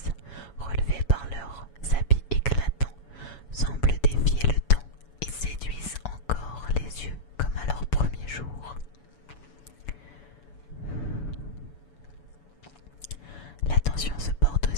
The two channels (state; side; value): late; right; 7.1 ms